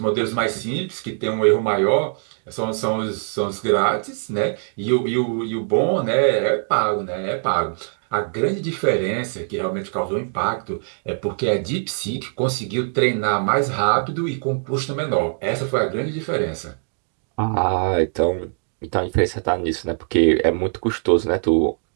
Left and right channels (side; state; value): left; silent; digital silence